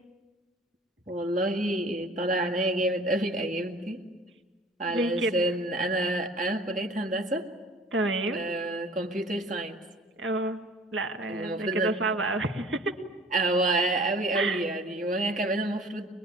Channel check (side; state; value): both; normal; correlation 0.48